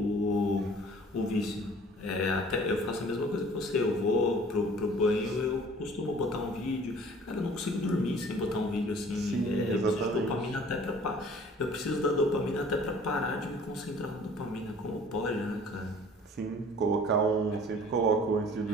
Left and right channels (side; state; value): both; normal; correlation 0.50